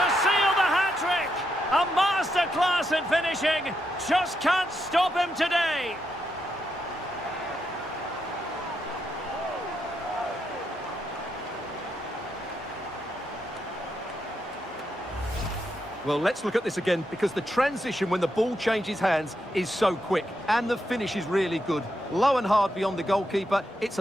A masterclass in finishing. Just can't stop him today. Well, let's look at this again, because the transition when the ball changes hands is so quick, and the finish is really good. Low and hard beyond the goalkeeper. It's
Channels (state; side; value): normal; both; correlation 0.82